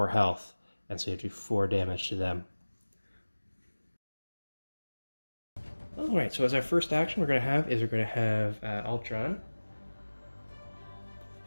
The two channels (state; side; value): inverted; both; correlation -1.00